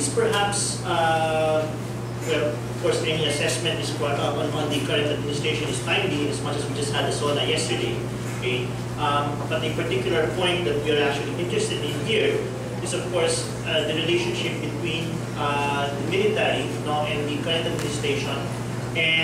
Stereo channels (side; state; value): both; identical; correlation 1.00